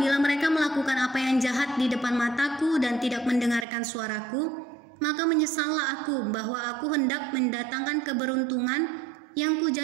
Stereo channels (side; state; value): left; drops out; at 3.7 s